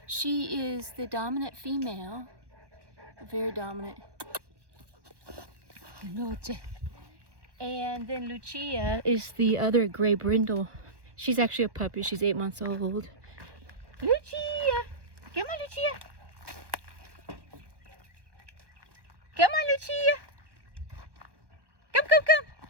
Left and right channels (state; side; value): late; left; 1.2 ms